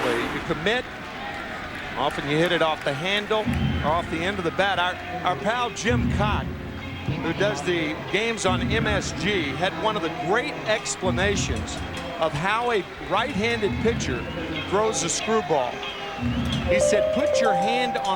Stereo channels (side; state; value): both; identical; correlation 1.00